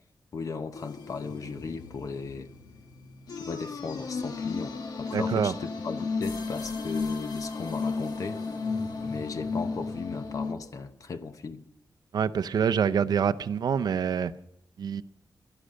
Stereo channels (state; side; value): normal; both; correlation 0.68